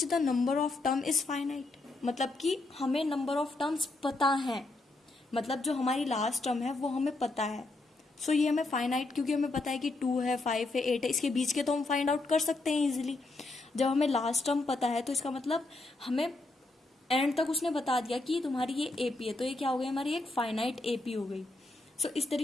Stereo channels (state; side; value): quieter; right; 3.0 dB